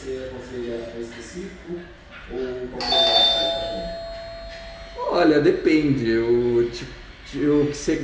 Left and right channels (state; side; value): identical; both; correlation 1.00